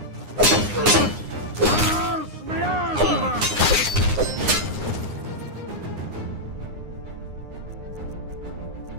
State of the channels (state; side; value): late; left; 9.7 ms